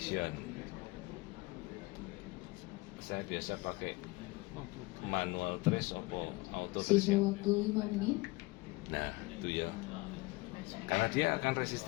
Saya biasa pakai manual trace atau auto trace. Sisa waktu 5 menit. Nah itu ya, karena dia akan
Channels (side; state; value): right; quieter; 22.9 dB